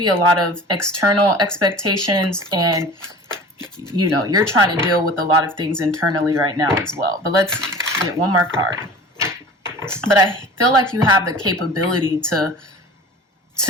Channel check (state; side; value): normal; both; correlation 0.41